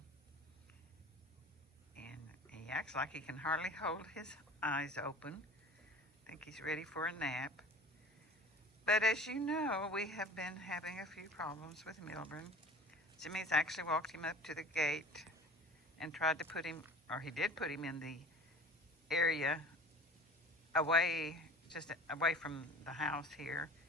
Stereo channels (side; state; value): both; normal; correlation 0.42